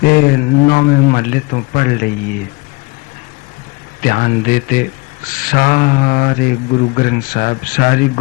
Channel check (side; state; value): right; quieter; 25.9 dB